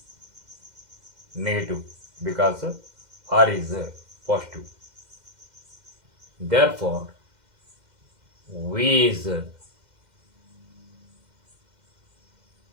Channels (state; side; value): late; left; 2.1 ms